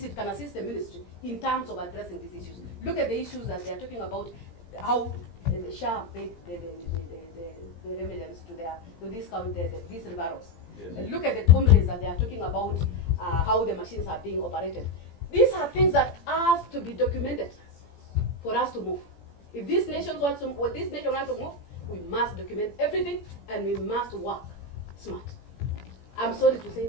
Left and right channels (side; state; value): right; late; 18 ms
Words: it can assist the ministry in terms of addressing these issues. Look at the issues that they are talking about, how the SHA paid the remedies to these referrals. Yes. Look at the complaints that they are talking about, how the machines are being operated. These are things that have to be documented for us to move. If this nation wants to move, we must document everything, and we must work smart. I'm sorry to say